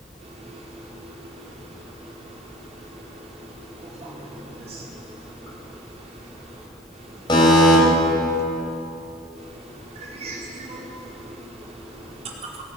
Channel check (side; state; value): both; normal; correlation 0.42